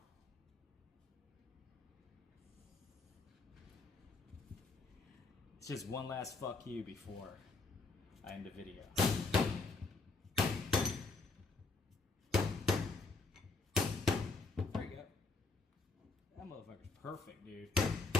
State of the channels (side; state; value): right; quieter; 3.8 dB